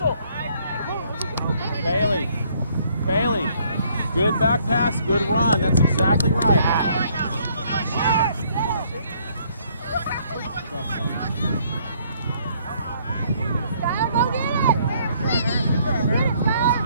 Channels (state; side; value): inverted; both; correlation -0.65